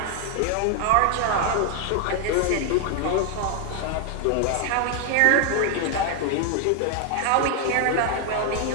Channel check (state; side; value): different; both; correlation 0.00